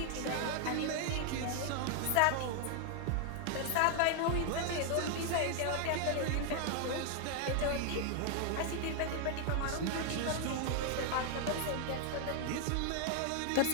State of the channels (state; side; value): different; both; correlation 0.00